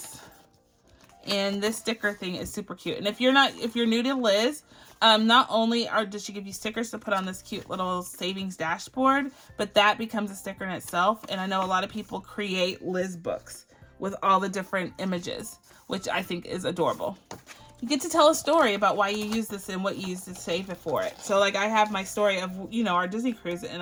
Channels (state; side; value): identical; both; correlation 1.00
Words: And this sticker thing is super cute. And if you're new to Liz, not only does she give you stickers to put on this cute little savings dashboard, but that becomes a sticker in itself. And I know a lot of people create Liz books with all the different images, which I think is adorable. You get to tell a story about why you use this and what you use to save it for it. So like I have my story of, you know, our Disney cruise, and